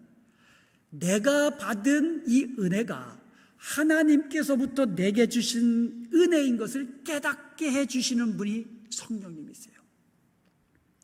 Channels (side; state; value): both; identical; correlation 1.00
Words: 내가 받은 이 은혜가 하나님께서부터 내게 주신 은혜인 것을 깨닫게 해주시는 분이 성령님이세요.